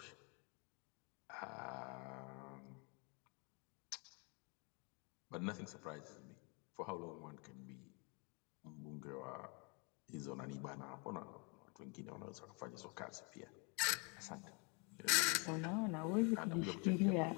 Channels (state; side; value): quieter; right; 33.2 dB